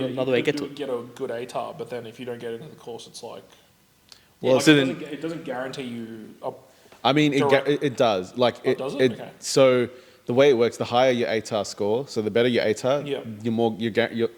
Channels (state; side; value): identical; both; correlation 1.00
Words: another way to could get to it. get a good ATAR, but then if you don't get into the course, it's like. Well, like, so it then doesn't- it doesn't guarantee you. I mean, Direct- it does. Like it, does it? Okay. So the way it works, the higher your ATAR score, so the better your ATAR, Yeah. you're